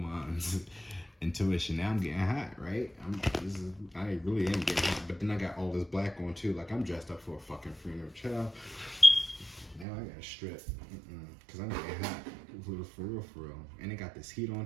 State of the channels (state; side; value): drops out; left; at 9.9 s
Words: Intuition. Now I'm getting hot, right? I really am getting hot. But then I got all this black on too. Like, I'm dressed up for a fucking funeral. Child. Now I got a strip. Because I'm getting hot. For real. And it got this heat on